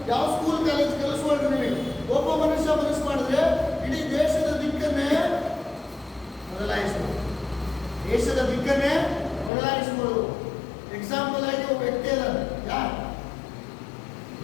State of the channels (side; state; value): right; drops out; at 9.5 s